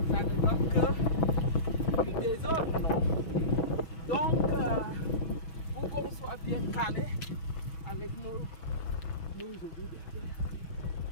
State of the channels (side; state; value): right; late; 6.2 ms